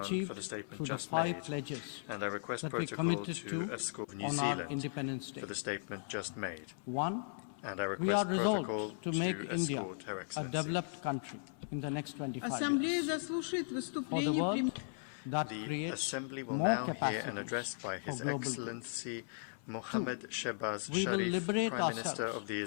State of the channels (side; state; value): right; silent; 53 dB below the other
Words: for the statement just made, and I request protocol to escort New Zealand for the statement just made. And I request protocol to escort Her Excellency. Ассамблея заслушает выступление премьера. The Assembly will now hear an address by His Excellency Mohammad Shehbaz Sharif, Prime Minister of the